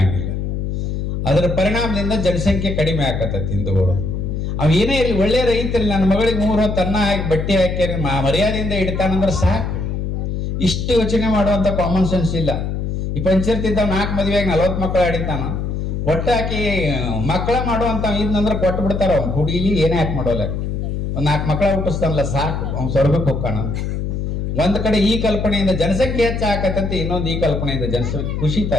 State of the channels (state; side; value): noise; left; hum, 2 dB below the sound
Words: ಅದರ ಪರಿಣಾಮದಿಂದ ಜನಸಂಖ್ಯೆ ಕಡಿಮೆ ಆಕತ್ತೈತಿ ಹಿಂದೂಗಳು. ಅವ್ ಏನೇ ಇರಲಿ, ಒಳ್ಳೆ ರೈತರಲ್ಲಿ ನನ್ನ ಮಗಳಿಗೆ 3 ಹೊತ್ತು ಅನ್ನ ಹಾಕಿ ಬಟ್ಟೆ ಹಾಕಿ ಮರ್ಯಾದೆಯಿಂದ ಇಡ್ತಾನಂದ್ರೆ ಸಾಕು. ಇಷ್ಟು ಯೋಚನೆ ಮಾಡುವಂತ ಕಾಮನ್ ಸೆನ್ಸ್ ಇಲ್ಲ. ಈ ಪಂಚಾಯತ್ 4 ಮದುವೆಯಾಗಿ 40 ಮಕ್ಕಳು ಆಡಿತಾನ. ಒಟ್ಟಾಕಿ ಮಕ್ಕಳ ಮಾಡುವಂತ ಇದ್ನಂದ್ರೆ ಕೊಟ್ಟು ಬಿಡ್ತಾರ. ಅವ್ನು ಹುಡುಗಿ ಏನೇ ಹಾಕಿ ಮಾಡೋಲ್ಲ, ಒಂದ್ 4 ಮಕ್ಕಳ ಹುಟ್ಟಿಸ್ತಾನಲ್ಲ ಸಾಕು, ಅವ್ನು ಸ್ವರ್ಗಕ್ಕೆ ಹೋಗ್ಕಾನ. ಒಂದ್ ಕಡೆ ಈ ಕಲ್ಪನೆಯಿಂದ ಜನಸಂಖ್ಯೆ ಹೆಚ್ಚಾಕತ್ತೈತಿ, ಇನ್ನೊಂದು ಈ ಕಲ್ಪನೆಯಿಂದ ಜನಸಂಖ್ಯೆ ಕುಸಿತಾ